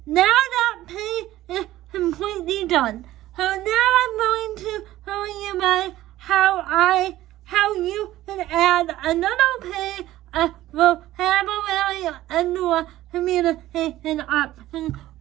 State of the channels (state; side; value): quieter; left; 15.1 dB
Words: Now that page is completely done. So now I'm going to show you how you can add another page of vocabulary and communication option